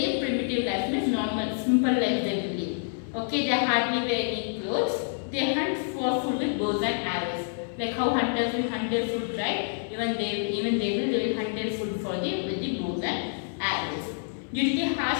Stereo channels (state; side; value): silent; right; 58 dB below the other